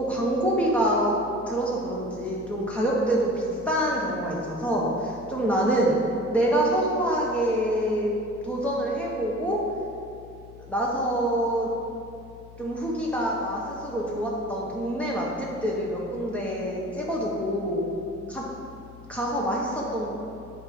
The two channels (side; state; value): left; noise; hum, 19 dB below the sound